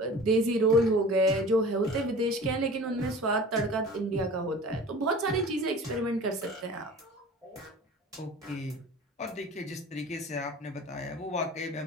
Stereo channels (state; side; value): normal; both; correlation 0.40